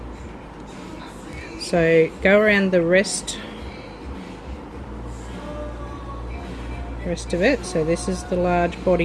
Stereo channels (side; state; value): both; identical; correlation 1.00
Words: So go around the rest of it. So this is the large